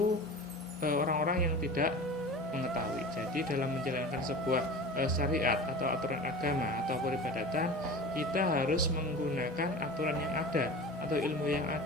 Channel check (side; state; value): both; normal; correlation 0.34